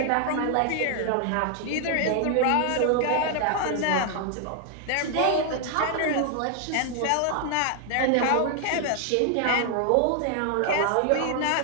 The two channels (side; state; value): both; different; correlation 0.00